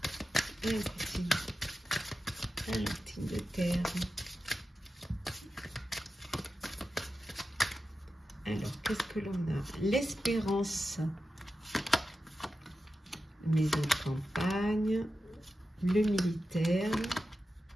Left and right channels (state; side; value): normal; both; correlation 0.91